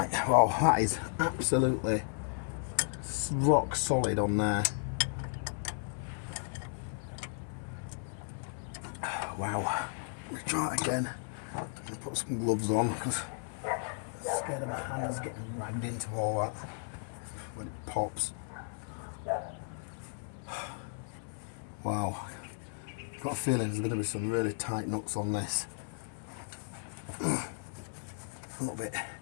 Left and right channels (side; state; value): right; silent; 55 dB below the other